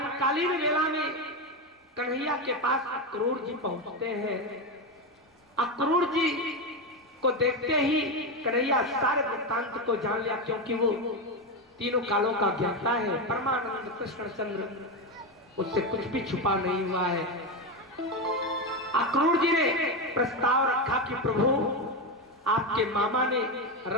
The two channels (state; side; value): normal; both; correlation 0.13